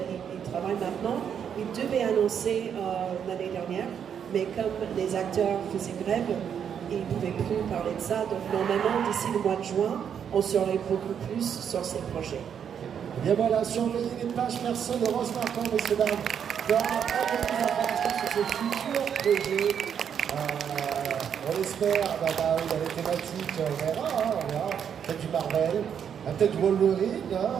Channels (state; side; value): quieter; left; 8.1 dB